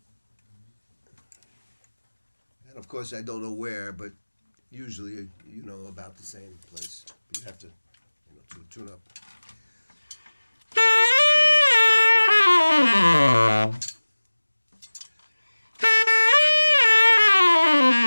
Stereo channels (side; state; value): both; inverted; correlation -1.00